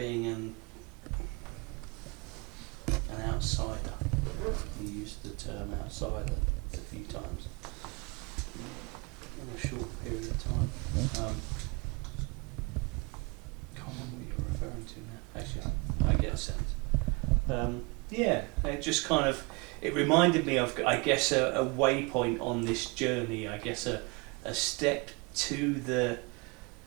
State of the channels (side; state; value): left; quieter; 29.0 dB